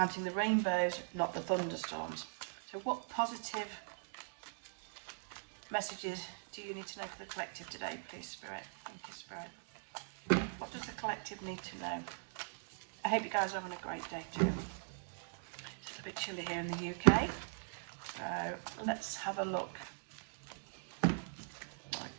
the rainbows, not the thunderstorms? So what positive messages do you need to know for the collective today, please, Spirit? Thank you, Spirit. What does the collective need to know? I hope you guys are having a great day too. It's a bit chilly here in the UK, so let's have a look. Okay.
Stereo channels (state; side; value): silent; left; digital silence